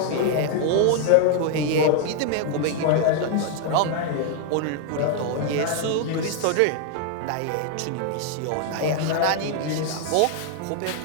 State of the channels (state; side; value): different; both; correlation 0.00